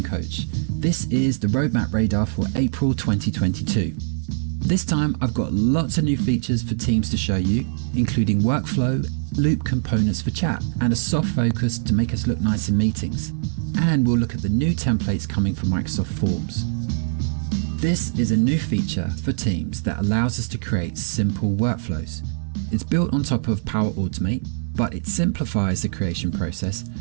Coach. This is the roadmap radar for April 2022. This time I've got lots of new features for Teams to show you, including workflow, loop components for chat, and a soft focus to make us look nice in meetings. And we'll look at the new templates coming from Microsoft Forms. This is a new feature for Teams that allows us to create simple workflows. It's built on top of Power Automate, but it simplifies the creation process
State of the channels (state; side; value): silent; left; digital silence